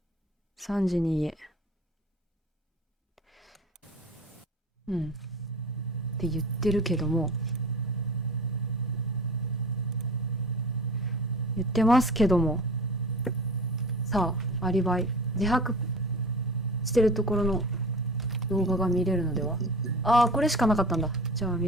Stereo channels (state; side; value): normal; both; correlation 0.38